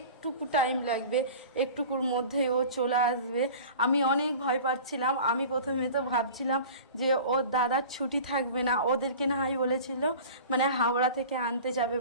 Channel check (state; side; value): inverted; both; correlation -0.39